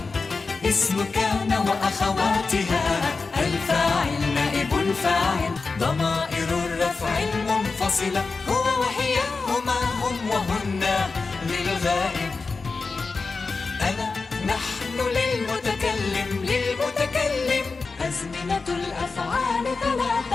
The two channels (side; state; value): right; quieter; 4.2 dB